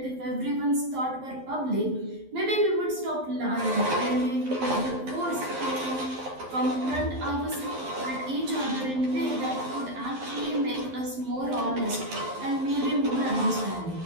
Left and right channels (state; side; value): late; left; 11 ms